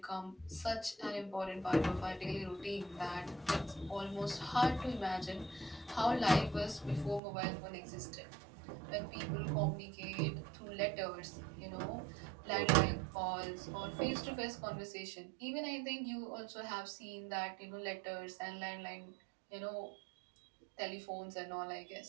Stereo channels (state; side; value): drops out; left; at 7.2 s